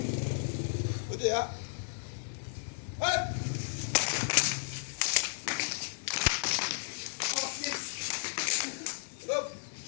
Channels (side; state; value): right; silent; digital silence